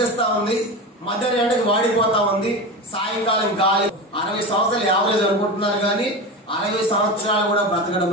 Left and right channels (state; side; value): normal; both; correlation 0.24